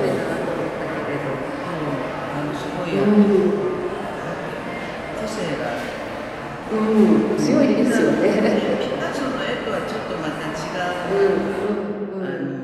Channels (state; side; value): identical; both; correlation 1.00